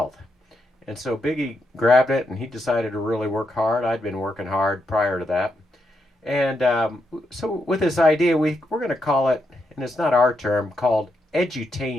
And so Biggie grabbed it and he decided to really work hard. I'd been working hard prior to that. And so with this idea, we're going to call it, and it's not our term, called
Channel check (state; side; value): normal; both; correlation 0.82